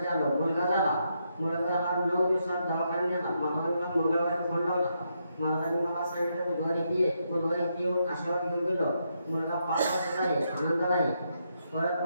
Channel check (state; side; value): inverted; both; correlation -0.80